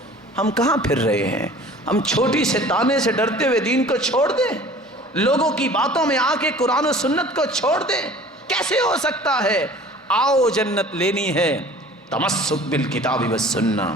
ہم کہاں پھر رہے ہیں؟ ہم چھوٹی سے تانے سے ڈرتے ہوئے دین کو چھوڑ دیں، لوگوں کی باتوں میں آ کے قرآن و سنت کو چھوڑ دیں؟ کیسے ہو سکتا ہے؟ آؤ جنت لینی ہے، تمسک بالکتاب والسنہ،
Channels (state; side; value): normal; both; correlation 0.46